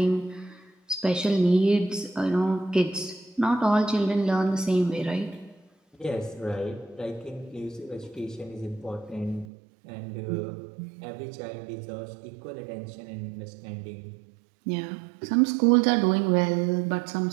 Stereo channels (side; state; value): left; drops out; at 9.5 s